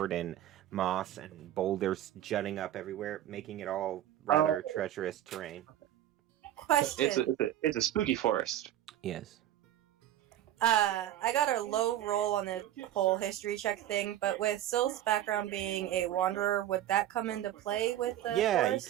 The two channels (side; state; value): left; quieter; 12.4 dB